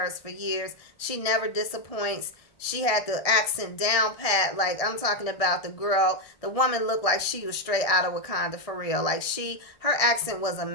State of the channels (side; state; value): right; late; 1.6 ms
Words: for years. She never disappoints. She had the accent down pat. Like, I'm talking about the woman looked like she was straight out of Wakanda for real. Like, her accent was